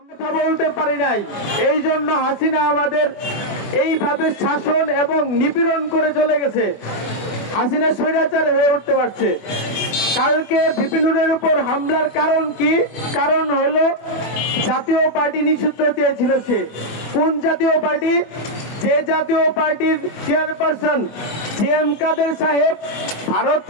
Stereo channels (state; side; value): late; right; 24 ms